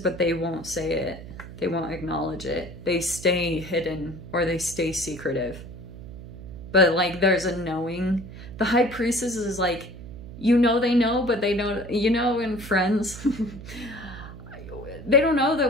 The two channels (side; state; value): right; noise; hum, 13 dB below the sound